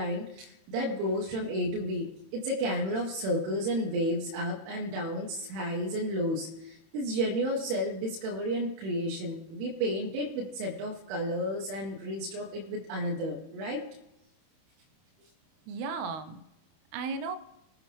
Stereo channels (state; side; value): late; left; 31 ms